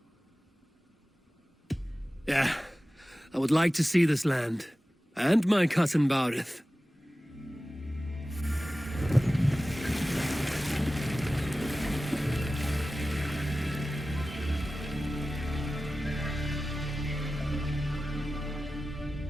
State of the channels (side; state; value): both; normal; correlation 0.95